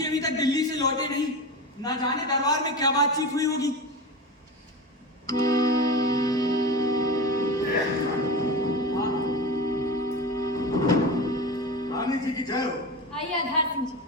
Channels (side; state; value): both; normal; correlation 0.25